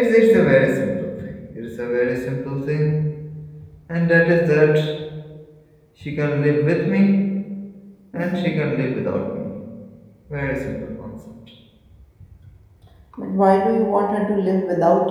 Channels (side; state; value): both; identical; correlation 1.00